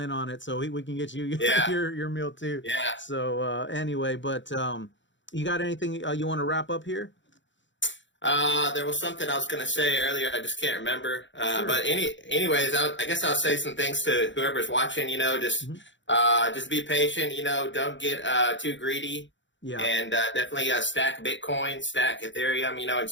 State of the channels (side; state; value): right; late; 0.54 ms